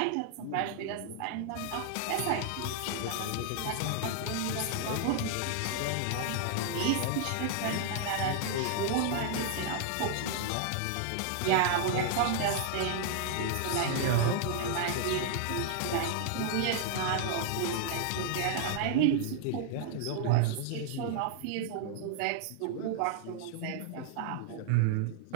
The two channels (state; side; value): different; both; correlation -0.01